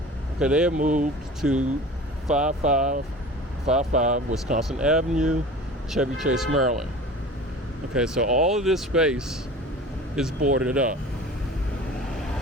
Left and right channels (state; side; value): normal; both; correlation 0.39